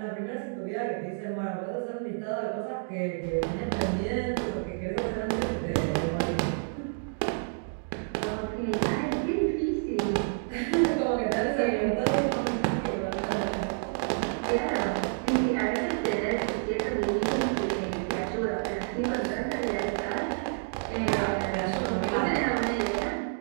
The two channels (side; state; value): left; silent; digital silence